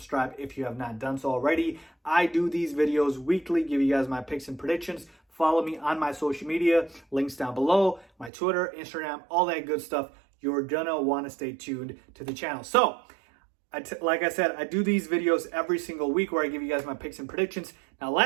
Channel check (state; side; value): drops out; left; at 8.3 s